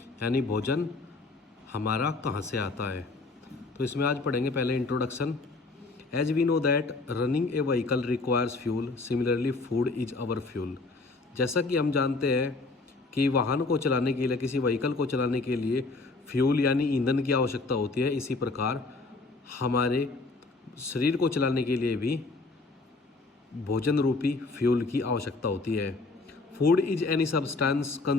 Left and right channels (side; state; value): right; quieter; 3.6 dB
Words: यानी भोजन हमारा कहाँ से आता है। तो इसमें आज पढ़ेंगे पहले introduction. As we know that running a vehicle requires fuel, similarly food is our fuel. जैसा कि हम जानते हैं कि वाहन को चलाने के लिए, किसी व्हीकल को चलाने के लिए फ्यूल यानी ईंधन की आवश्यकता होती है, इसी प्रकार हमारे शरीर को चलाने के लिए भी भोजन रूपी फ्यूल की आवश्यकता होती है। Food is any substance